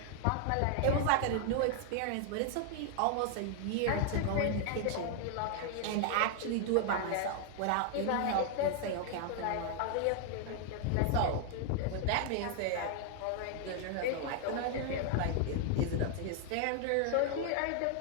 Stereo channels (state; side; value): different; both; correlation 0.00